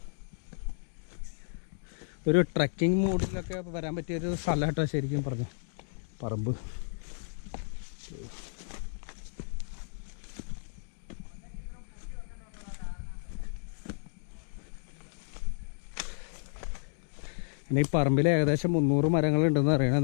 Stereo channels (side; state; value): right; silent; digital silence